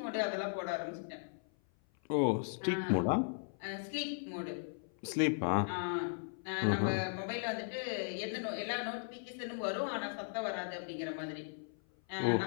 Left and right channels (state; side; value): silent; right; 53 dB below the other